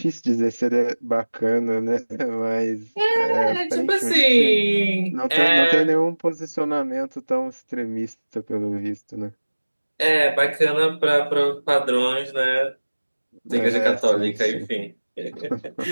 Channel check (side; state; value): both; inverted; correlation -1.00